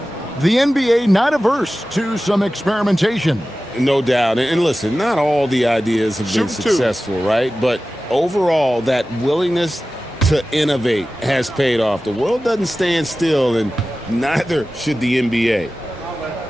the NBA not averse to some experimentation. No doubt. And listen, not all the ideas have been successful, right? But overall, that willingness to innovate has paid off. The world doesn't stand still, and neither should the NBA.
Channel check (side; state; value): both; normal; correlation 0.95